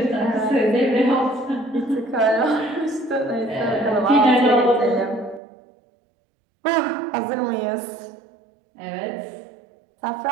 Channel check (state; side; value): drops out; left; at 5.4 s